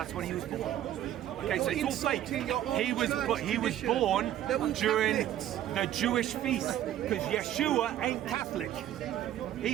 when he was born. Okay, so it's all fake. He was born during the Jewish feast, because Yeshua ain't Catholic.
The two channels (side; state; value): left; quieter; 12.1 dB